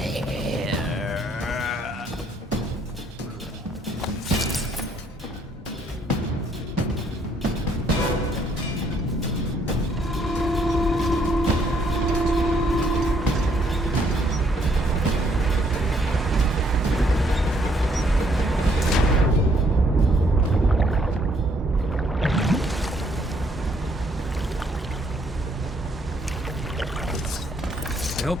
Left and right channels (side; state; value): both; normal; correlation 0.68